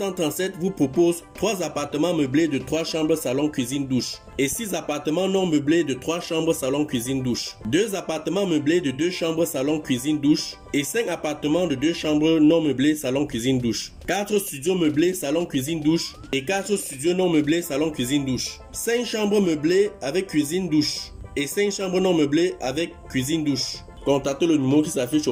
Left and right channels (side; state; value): both; identical; correlation 1.00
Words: vous propose 3 appartements meublés de 3 chambres, salon, cuisine, douche et 6 appartements non meublés de 3 chambres, salon, cuisine, douche. 2 appartements meublés de 2 chambres, salon, cuisine, douche et 5 appartements de 2 chambres non meublés, salon, cuisine, douche. 4 studios meublés, salon, cuisine, douche et 4 studios non meublés, salon, cuisine, douche. 5 chambres meublées avec cuisine, douche et 5 chambres non meublées avec cuisine, douche. Contactez le numéro qui s'affiche